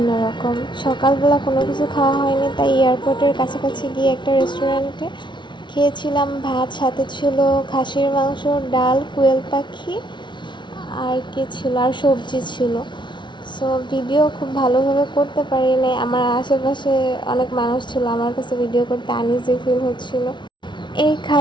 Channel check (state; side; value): late; right; 0.23 ms